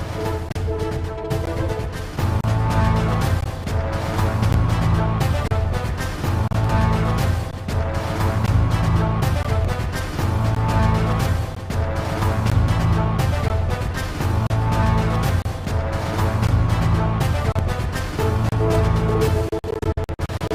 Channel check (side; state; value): both; identical; correlation 1.00